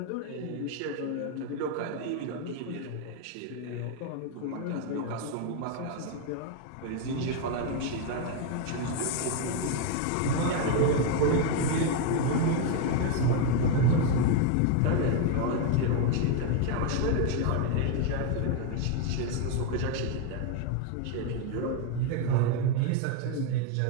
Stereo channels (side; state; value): both; different; correlation 0.01